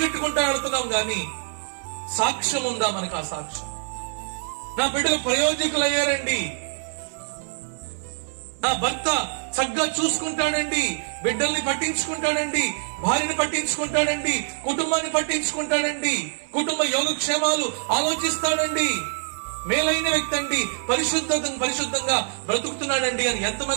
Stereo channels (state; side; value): silent; left; 57 dB below the other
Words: వెళ్తున్నాం గాని సాక్ష్యం ఉందా మనకు? ఆ సాక్ష్యం, నా బిడ్డలు ప్రయోజకులు అయ్యారండి, నా భర్త చక్కగా చూసుకుంటాడండి, బిడ్డల్ని పట్టించుకుంటాడండి, భార్యని పట్టించుకుంటాడండి, కుటుంబాన్ని పట్టించుకుంటాడండి, కుటుంబ యోగక్షేమాలు ఆలోచిస్తాడండి, మేలైన వ్యక్తి అండి, పరిశుద్ధంగా బ్రతుకుతున్నాడండి అని